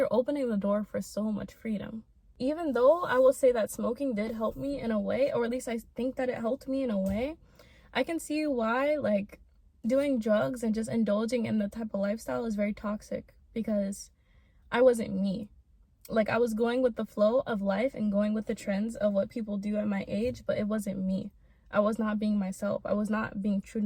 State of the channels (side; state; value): both; identical; correlation 1.00